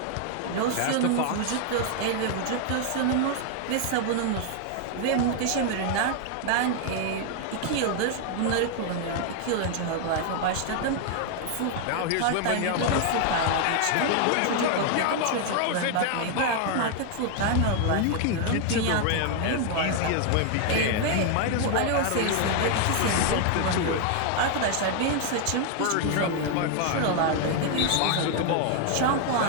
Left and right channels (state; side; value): different; both; correlation 0.00